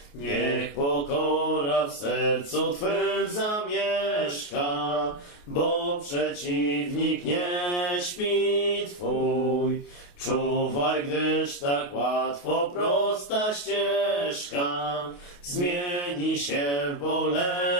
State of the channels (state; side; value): late; right; 28 ms